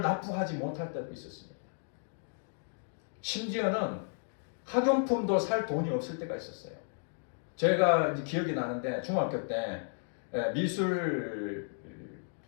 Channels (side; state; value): right; silent; digital silence